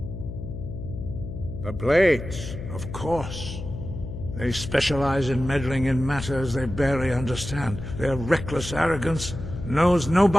The Blades, of course. They specialize in meddling in matters they barely understand. Their reckless arrogance knows no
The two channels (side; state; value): left; noise; hum, 8 dB below the sound